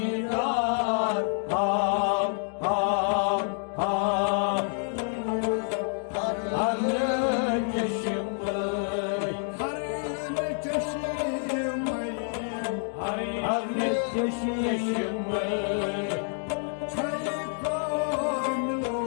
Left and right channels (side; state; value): right; silent; 55 dB below the other